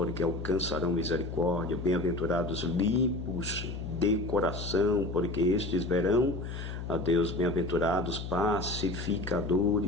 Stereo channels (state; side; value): noise; left; hum, 7 dB below the sound